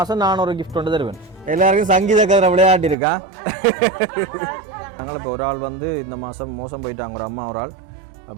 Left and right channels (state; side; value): drops out; left; at 3.0 s